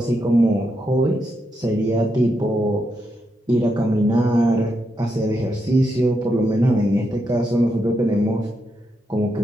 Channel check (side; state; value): both; normal; correlation 0.82